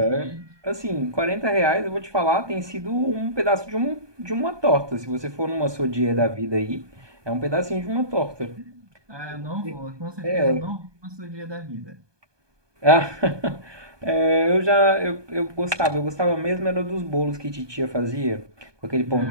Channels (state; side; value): late; left; 1.2 ms